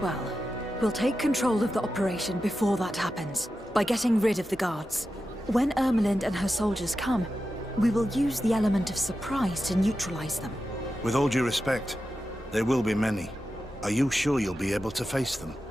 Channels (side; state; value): both; normal; correlation 0.91